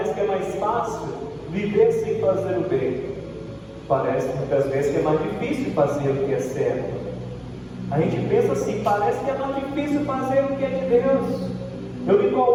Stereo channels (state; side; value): identical; both; correlation 1.00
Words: que é mais fácil viver sem fazer o bem. Parece muitas vezes que é mais difícil fazer o que é certo. A gente pensa assim, parece que é mais difícil fazer o que é de Deus. Eu me